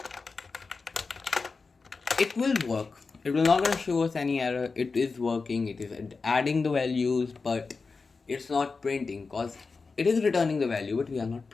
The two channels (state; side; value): quieter; right; 4.4 dB